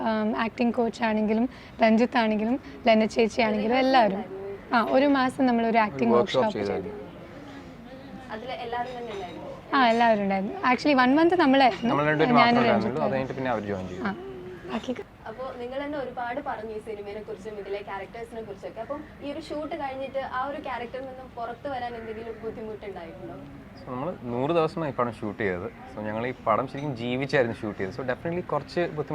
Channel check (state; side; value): identical; both; correlation 1.00